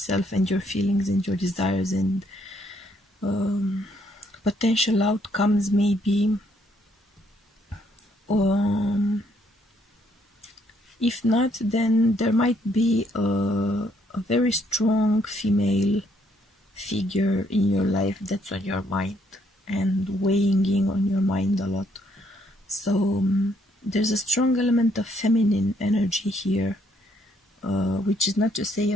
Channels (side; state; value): both; normal; correlation 0.70